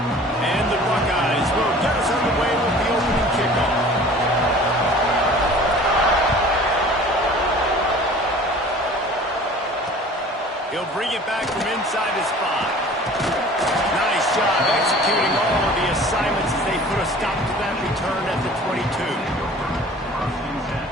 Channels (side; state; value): both; normal; correlation 0.46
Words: He'll bring it back from inside his 5. Nice job executing all of the assignments as they put a stop to that return at the 22.